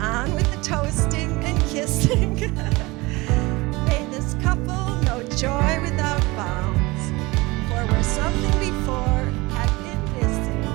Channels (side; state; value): left; quieter; 22.8 dB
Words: with the toasting and kissing. May this couple know joy without bounds, for where something before had been